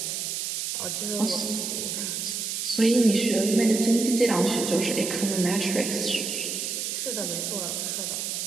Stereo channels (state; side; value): noise; right; hiss, 3 dB below the sound